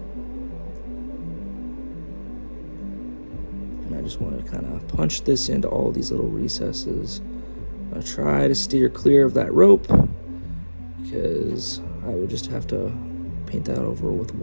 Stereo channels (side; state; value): both; inverted; correlation -1.00